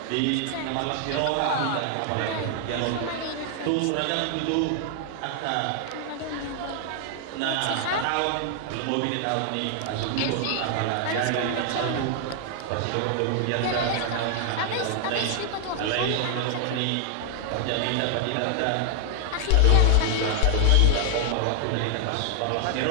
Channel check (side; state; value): both; different; correlation 0.00